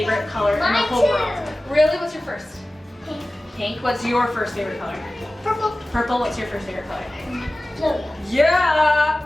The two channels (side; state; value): both; normal; correlation 0.96